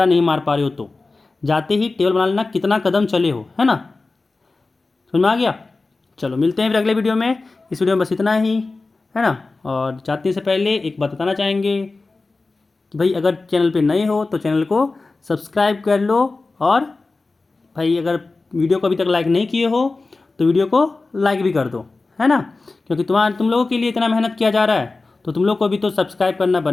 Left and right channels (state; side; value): quieter; right; 3.6 dB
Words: नहीं मार पा रहे हो तो जाते ही टेबल बना लेना, कितना कदम चले हो, है ना, समझ में आ गया। चलो मिलते हैं फिर अगले वीडियो में, इस वीडियो में बस इतना ही, है ना। और जाने से पहले एक बात बताना चाहेंगे कि भाई अगर चैनल पे नए हो तो चैनल को सब्सक्राइब कर लो, और भाई अगर वीडियो को अभी तक लाइक नहीं किए हो तो वीडियो को लाइक भी कर दो, है ना, क्योंकि तुम लोगों के लिए इतना मेहनत किया जा रहा है तो तुम लोग को भी तो सब्सक्राइब करना